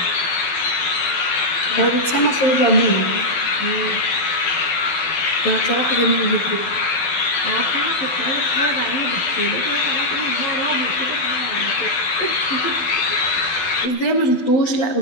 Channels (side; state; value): right; late; 12 ms